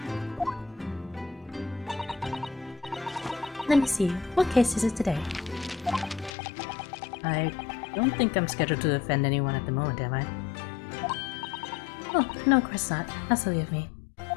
Let me see, what case is it today? I don't think I'm scheduled to defend anyone at the moment, am I? Oh, no, of course not. How silly of me.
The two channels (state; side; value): drops out; right; at 6.3 s